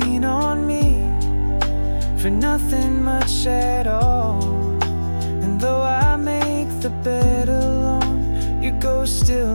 on me for nothing much at all. And though I make the bed alone, your ghost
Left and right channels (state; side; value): inverted; both; correlation -1.00